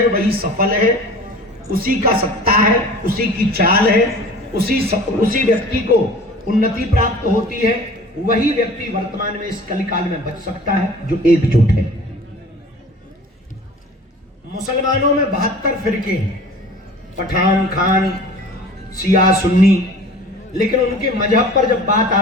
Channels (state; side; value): normal; both; correlation 0.43